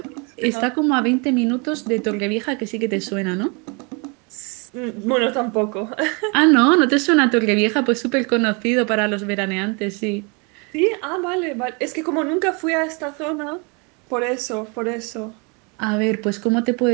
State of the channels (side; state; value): left; quieter; 32.0 dB